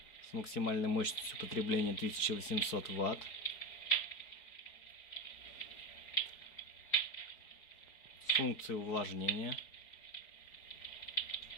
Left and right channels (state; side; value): late; right; 4.8 ms